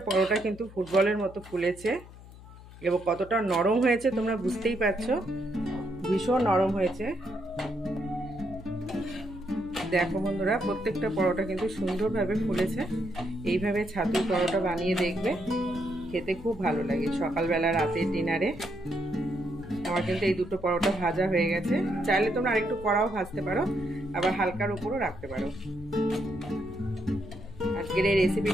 পরোটা কিন্তু ফুটবলের মতো ফুলেছে এবং কতটা নরম হয়েছে তোমরা বুঝতেই পারছো, ভীষণ নরম হয়েছে। দেখো বন্ধুরা প্রত্যেকটা পরোটা কিন্তু সুন্দরভাবে ফুলেছে। এইভাবে ছাতুর পরোটা বানিয়ে দেখবে, খেতে খুব ভালো লাগে সকালবেলা, রাতের ডিনারে। আমার কিন্তু এই দুটো পরোটা ভাজা হয়ে গেছে। চাইলে তোমরা আরেকটু কড়াও ভাজতে পারো, আবার হালকার উপরও রাখতে পারো। আজকের এই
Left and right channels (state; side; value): noise; left; hum, 18 dB below the sound